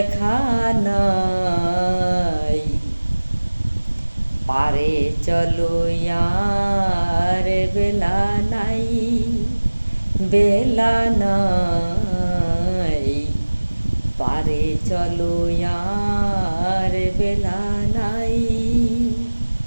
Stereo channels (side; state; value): both; inverted; correlation -1.00